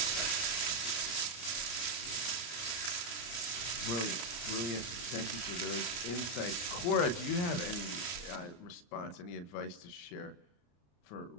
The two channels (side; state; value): right; late; 34 ms